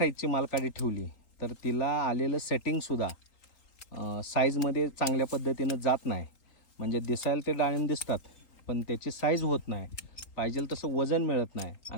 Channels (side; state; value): right; late; 3.9 ms